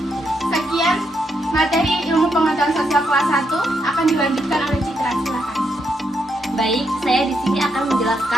Sekian materi ilmu pengetahuan sosial kelas 1 akan dilanjutkan oleh Citra. Silakan. Baik, saya di sini akan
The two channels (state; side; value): normal; both; correlation 0.79